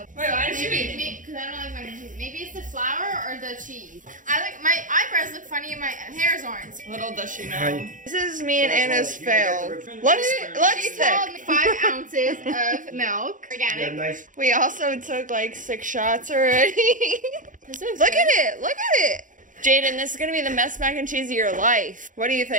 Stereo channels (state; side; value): late; left; 0.38 ms